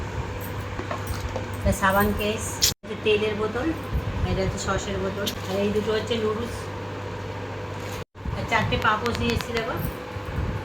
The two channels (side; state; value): both; identical; correlation 1.00